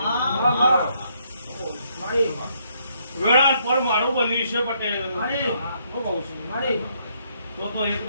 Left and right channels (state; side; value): inverted; both; correlation -0.72